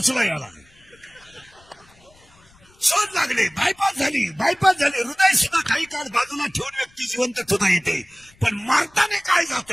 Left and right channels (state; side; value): noise; left; rumble, 29 dB below the sound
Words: याला. शोध लागले. बायपास झाली. हृदय सुद्धा काही काळ बाजूला ठेवून व्यक्ती जिवंत सुद्धा येते, पण मारताना काय